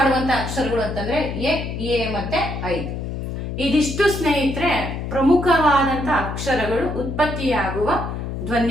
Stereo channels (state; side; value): noise; left; hum, 5 dB below the sound